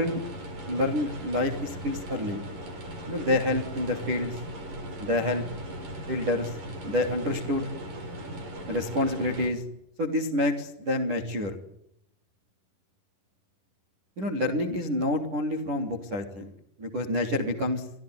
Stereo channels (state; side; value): late; left; 10 ms